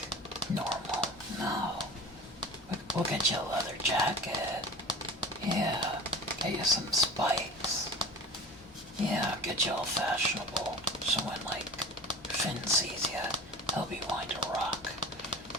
normal. No. We'll get you a leather jacket. Yeah. Get you some spikes. Yeah, get you all fashionable. So when like Finn sees you, he'll be wanting to rock.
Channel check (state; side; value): normal; both; correlation 0.36